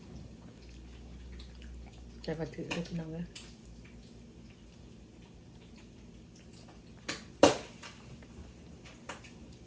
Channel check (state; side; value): identical; both; correlation 1.00